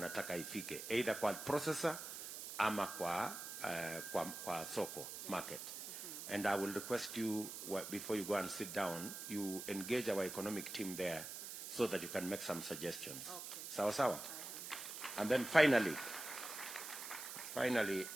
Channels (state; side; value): noise; right; hiss, 8 dB below the sound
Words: ifike, either kwa processor ama kwa soko market. And I will request you, before you go and sit down, you engage our economic team there so that you can make some suggestions. Okay. Sawa sawa. And then finally